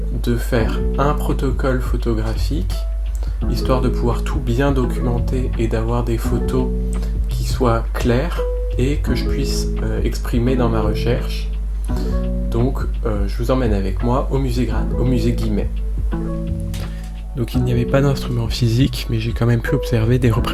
de faire un protocole photographique, histoire de pouvoir tout bien documenter et d'avoir des photos qui soient claires et que je puisse exprimer dans ma recherche. Donc je vous emmène avec moi au musée Guimet. Donc il n'y avait pas d'instruments physiques, mais j'ai quand même pu observer des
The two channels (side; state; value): both; identical; correlation 1.00